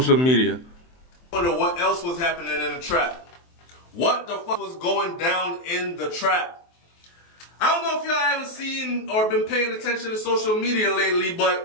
media. I wonder what else was happening in the trap. What the fuck was going down in the trap? I don't know if y'all haven't seen or been paying attention to social media lately,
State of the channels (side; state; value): right; late; 23 ms